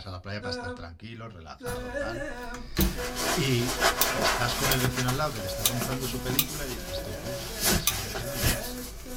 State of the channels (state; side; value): identical; both; correlation 1.00